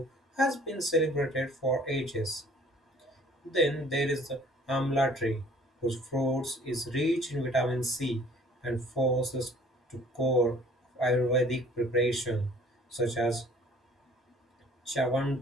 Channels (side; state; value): both; normal; correlation 0.54